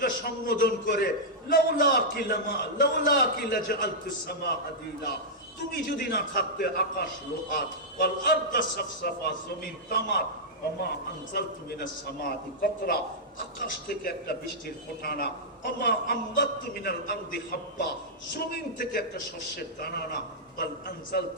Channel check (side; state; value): both; normal; correlation -0.09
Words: সম্বোধন করে লাউলা কিলা জাআলতুস সামা হাদিদা, তুমি যদি না থাকতে আকাশ লোহা, ওয়াল আরদা সাফসাফা, জমিন তামার, ওমা আনজালতু মিনাস সামাতি কাতরা, আকাশ থেকে একটা বৃষ্টির ফোঁটা না, ওমা আমবাততু মিনাল আরদি হাব্বা, জমিন থেকে একটা শস্যের দানা না, বাল